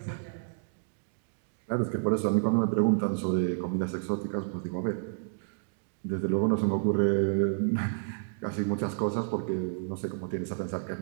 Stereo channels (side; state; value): left; silent; digital silence